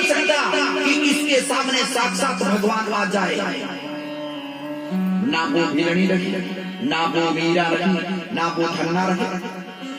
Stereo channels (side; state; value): both; identical; correlation 1.00